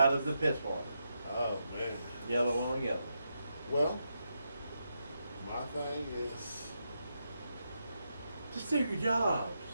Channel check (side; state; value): both; inverted; correlation -0.84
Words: of the piss water. Oh, man. Yellow on yellow. Well, my thing is... just do your jobs.